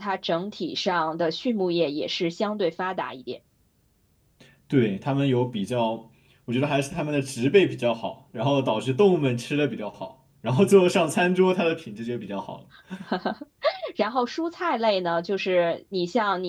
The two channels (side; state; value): both; identical; correlation 1.00